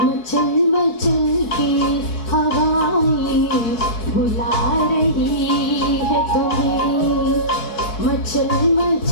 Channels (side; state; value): right; late; 4.7 ms